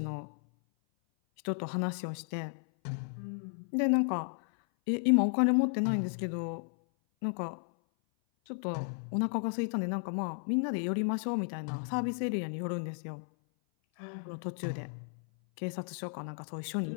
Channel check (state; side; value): silent; right; 55 dB below the other